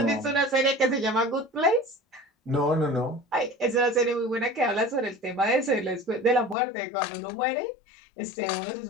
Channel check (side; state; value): right; drops out; at 6.6 s